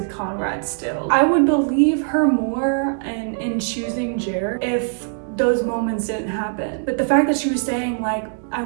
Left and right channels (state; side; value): silent; left; digital silence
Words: Conrad still. I would believe her more in choosing Jer if those moments didn't happen. But the fact that she was saying like, I